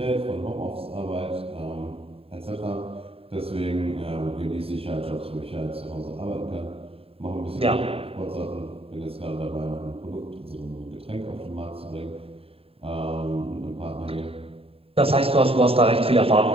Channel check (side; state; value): left; late; 0.27 ms